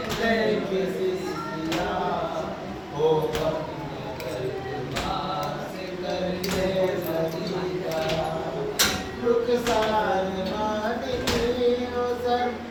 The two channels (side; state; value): both; identical; correlation 1.00